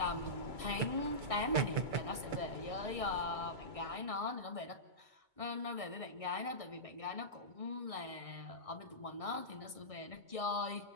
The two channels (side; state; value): left; late; 2.2 ms